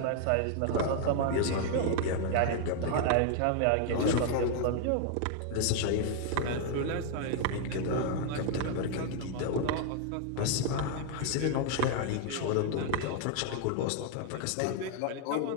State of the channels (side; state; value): both; different; correlation 0.00